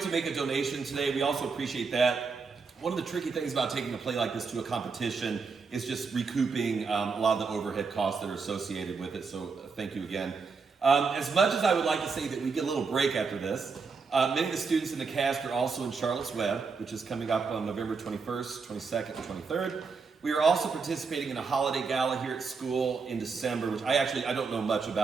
make a donation today, we also appreciate that. One of the tricky things about taking a play like this to a competition is just recouping a lot of the overhead costs that are associated with it, so thank you again. As much as I would like to say that we get a little break after this, many of the students in the cast are also in Charlotte's Web, which is coming up on November 21st, 22nd, and 23rd. We are also participating in a holiday gala here at school in December, which I don't know much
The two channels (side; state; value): left; quieter; 4.9 dB